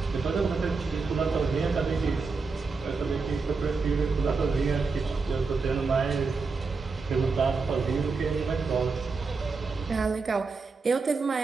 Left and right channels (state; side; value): quieter; left; 4.5 dB